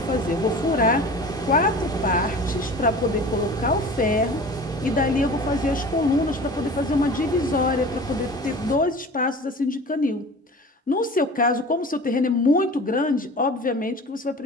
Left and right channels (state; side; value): normal; both; correlation 0.39